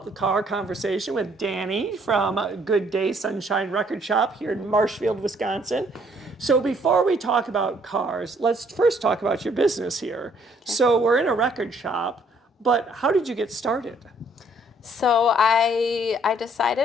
the car conversation with Dani from Good Day Sunshine Record Shop here in Marshfield, Wisconsin. So before we talk about cars, let's first talk about your business here. Okay. So we're in a record shop, but how did you get started? So I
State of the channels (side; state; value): both; normal; correlation 0.64